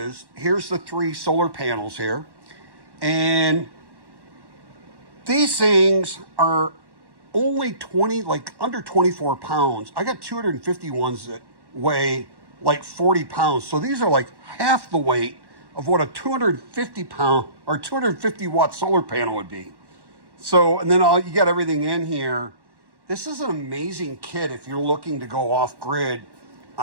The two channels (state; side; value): late; left; 1.1 ms